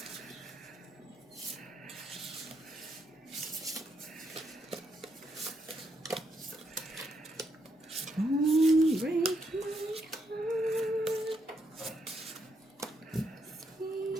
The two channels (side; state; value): both; normal; correlation 0.77